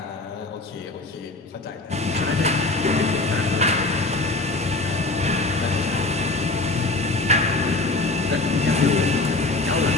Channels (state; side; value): quieter; right; 3.0 dB